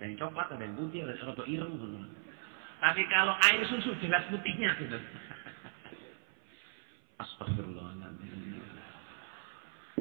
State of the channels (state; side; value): silent; left; 53 dB below the other